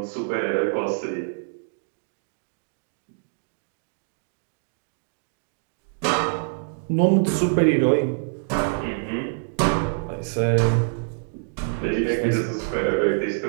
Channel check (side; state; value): left; silent; digital silence